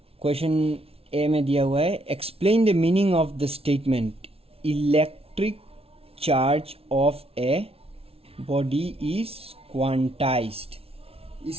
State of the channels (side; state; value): left; late; 0.28 ms